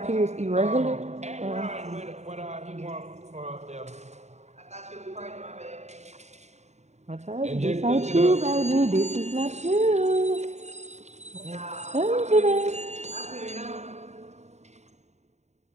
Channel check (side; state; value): left; late; 0.32 ms